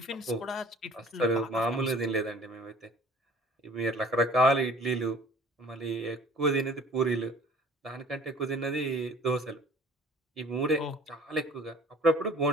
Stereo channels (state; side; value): normal; both; correlation 0.50